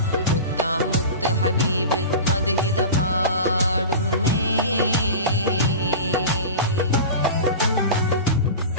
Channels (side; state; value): both; inverted; correlation -0.30